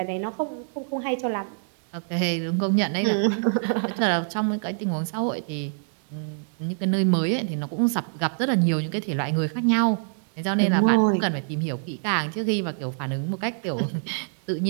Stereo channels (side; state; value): left; silent; digital silence